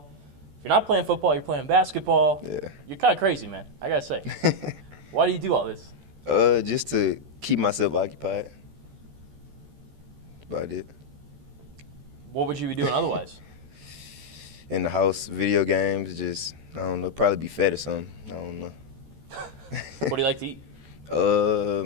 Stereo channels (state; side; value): late; left; 14 ms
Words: If you're not playing football, you're playing basketball. Yeah. You're kind of crazy, man. I gotta say. Why do you do all this? Just to keep myself occupied. That's about it. What would you be doing otherwise? In the house, video games, just, I don't know, probably be fed or something. I don't know. What do you like to eat?